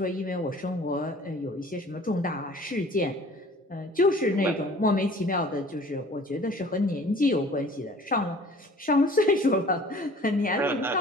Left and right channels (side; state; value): both; normal; correlation 0.49